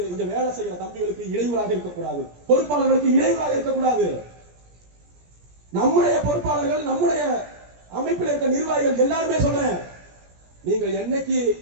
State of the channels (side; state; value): left; late; 17 ms